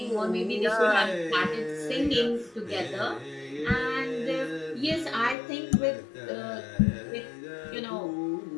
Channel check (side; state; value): right; drops out; at 5.4 s